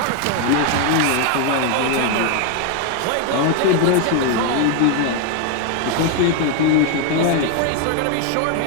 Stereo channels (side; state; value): both; different; correlation 0.01